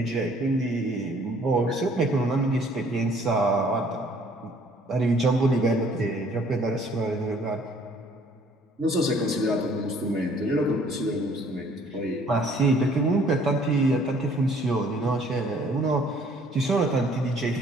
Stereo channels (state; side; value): normal; both; correlation 0.59